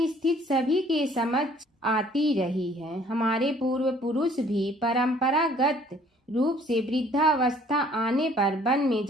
स्थिति सभी के समझ आती रही है। हमारे पूर्व पुरुष भी परंपरागत रूप से वृद्धावस्था आने पर वन में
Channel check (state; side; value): normal; both; correlation 0.57